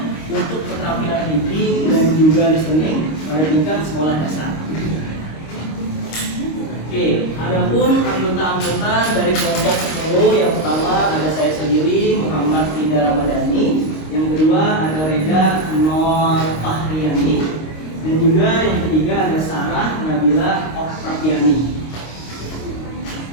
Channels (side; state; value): right; late; 26 ms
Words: untuk keterampilan reading dan juga listening pada tingkat sekolah dasar. Adapun anggota-anggota dari kelompok 10 yang pertama ada saya sendiri Muhammad Ida Ramadhani, yang kedua ada Reda Nur Fahriani, dan juga yang ketiga ada Sarah Nabila Oktaviani.